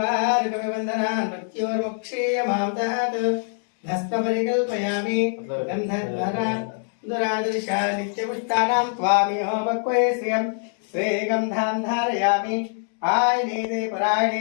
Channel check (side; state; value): right; silent; 63 dB below the other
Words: मृत्योर्मुक्षीयमामदात् भस्मपरिकल्पयामि। गन्धद्वारा दुरादर्शा नित्यपुष्टानां त्वामियोपक्वयस्यं स्वे गन्धां धारयामि। आयनेते